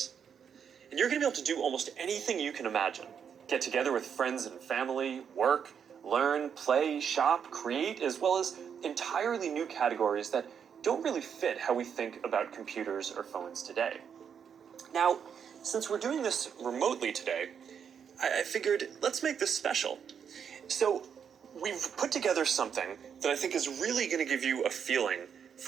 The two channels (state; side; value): quieter; left; 7.5 dB